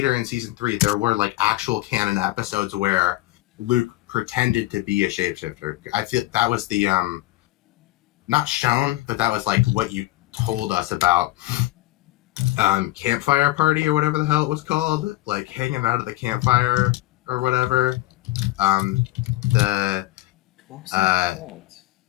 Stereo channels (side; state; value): right; quieter; 17.9 dB